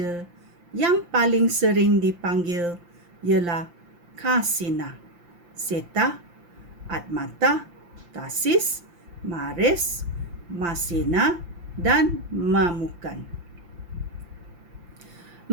yang paling sering dipanggil ialah Kasina, Seta, Atmata, Tasis, Mares, Masina dan Mamukan.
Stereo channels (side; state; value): left; late; 5.8 ms